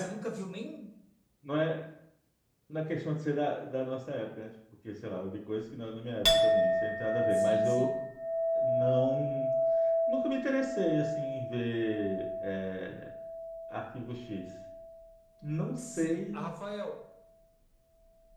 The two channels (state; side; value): identical; both; correlation 1.00